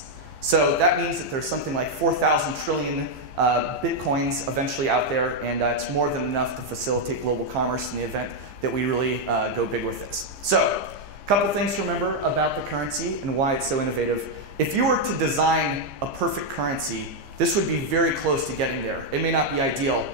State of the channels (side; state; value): left; late; 15 ms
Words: So that means that there's something like 4,000 trillion Bitcoins eventually out there, and it's more than enough to facilitate global commerce in the event that we really go big with this. So, a couple things to remember about the currency and why it's so innovative. If you were to design a perfect currency, this would be very close to getting there. It may not be ideal,